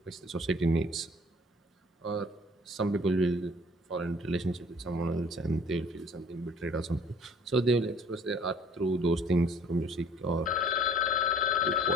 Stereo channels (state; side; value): normal; both; correlation 0.53